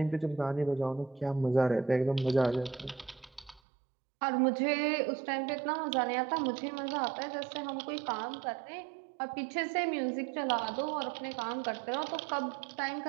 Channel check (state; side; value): drops out; left; at 3.6 s